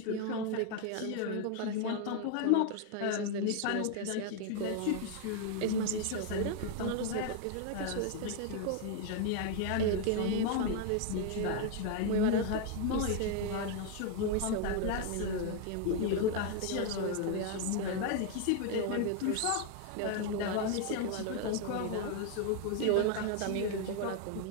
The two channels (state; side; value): different; both; correlation 0.01